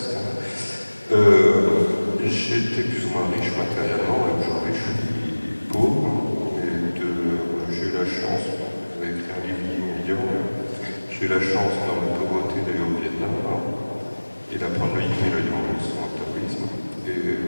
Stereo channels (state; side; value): inverted; both; correlation -1.00